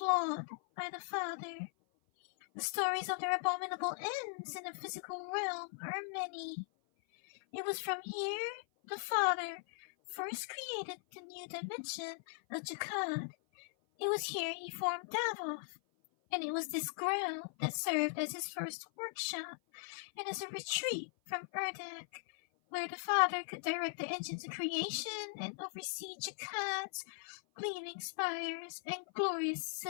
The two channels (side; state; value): right; silent; 52 dB below the other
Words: by the Father. The stories of their abominable ends in the physical realm are many. It was from here the Father first created the new dimension of Jakad. It was here he formed Davos, and it was this ground that served as his first workshop and as a retreat from Urdak, where the Father could direct the engines of creation and oversee Jakad's gleaming spires and glorious